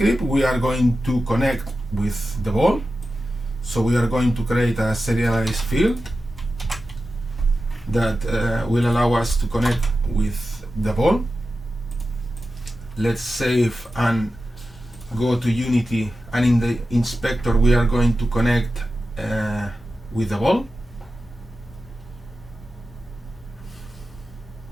we are going to connect with the ball. So we are going to create a serialized field that will allow us to connect with the ball. Let's save and go to Unity, and in the inspector we are going to connect with the ball.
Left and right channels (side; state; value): both; normal; correlation 0.92